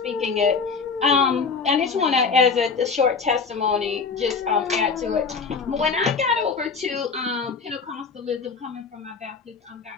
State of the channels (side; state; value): right; quieter; 5.1 dB